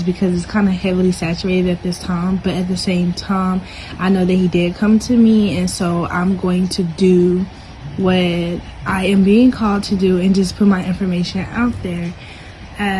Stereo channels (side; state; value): both; identical; correlation 1.00